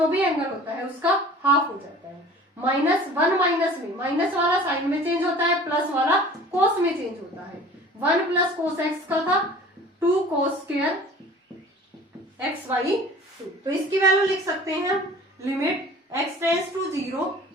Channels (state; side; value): normal; both; correlation 0.45